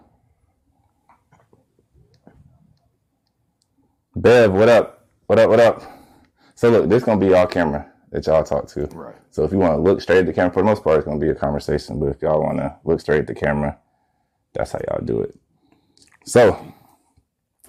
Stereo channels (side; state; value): both; identical; correlation 1.00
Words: Bev, what up? So look, this gonna be y'all camera that y'all talk to. Right. So if you want to look straight at the camera, for the most part, it's gonna be a conversation. But if y'all want to look straight at the camera, that's how y'all do it. So